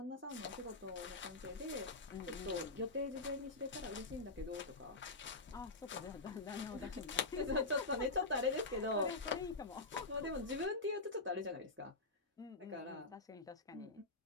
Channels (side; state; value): right; quieter; 3.1 dB